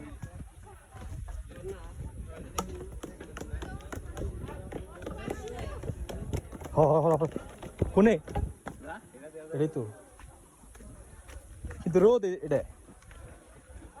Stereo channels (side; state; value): both; identical; correlation 1.00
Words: কোনে এটাই তো কিন্তু রোদ এটা